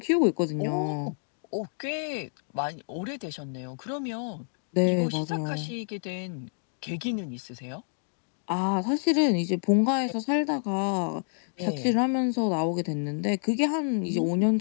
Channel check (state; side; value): silent; right; digital silence